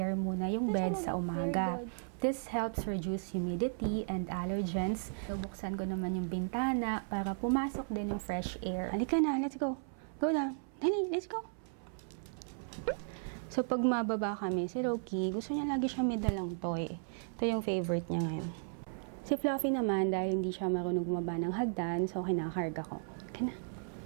muna yung bed sa umaga. This helps reduce humidity and allergens. Buksan ko naman yung bintana para pumasok din yung fresh air. Halika na, let's go. Go down. Dali, let's go. So, pag mababa kami, si Loki, gusto niya lagi siya may dalang toy. Ito yung favorite niya ngayon. Si Fluffy naman, dahil hindi siya marunong bumaba ng hagdan, so kinakarga ko. Kana.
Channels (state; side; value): silent; left; 54 dB below the other